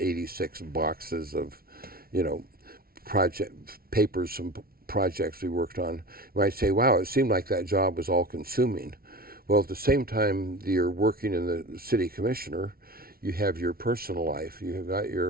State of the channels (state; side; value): late; left; 0.44 ms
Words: boxes of, project papers, some projects we worked on, you might say, wow, it seemed like that job was all consuming. Well, at the same time you're working in the city commissioner, you have your personal life. You've got